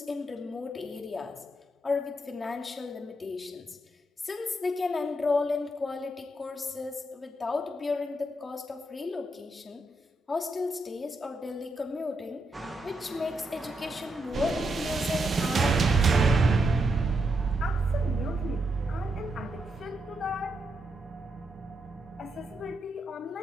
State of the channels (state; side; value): normal; both; correlation 0.81